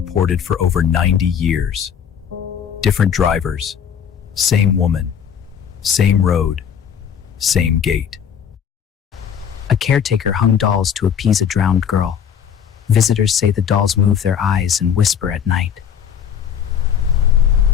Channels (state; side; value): quieter; right; 8.0 dB